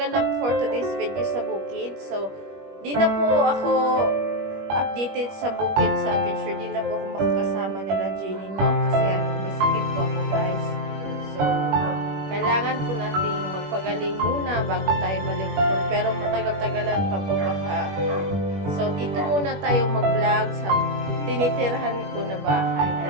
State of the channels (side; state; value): left; late; 21 ms